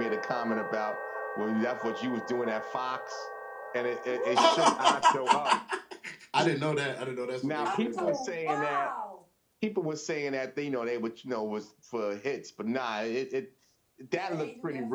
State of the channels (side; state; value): both; identical; correlation 1.00